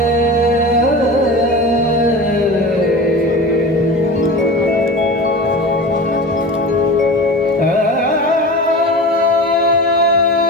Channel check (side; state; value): both; normal; correlation 0.31